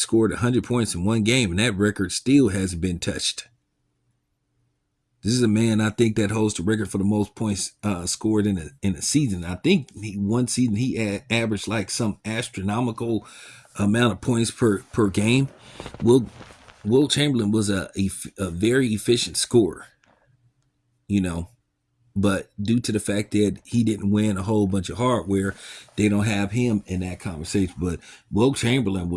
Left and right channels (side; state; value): both; identical; correlation 1.00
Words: 100 points in one game, and that record still hasn't been touched. This is a man, I think, that holds the record for the most points scored in a season. I think one season he averaged like some astronomical amount of points per game. Will Chamberlain was a very efficient scorer, you know, but due to the fact that he didn't win a whole bunch of hardware, they don't have him in that conversation. But Will Chamberlain